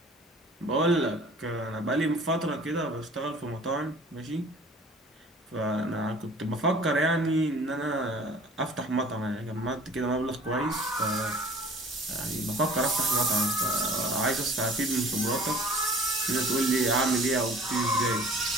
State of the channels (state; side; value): normal; both; correlation 0.47